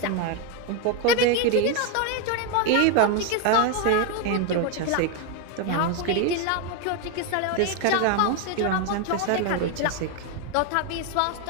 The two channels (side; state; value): both; different; correlation 0.01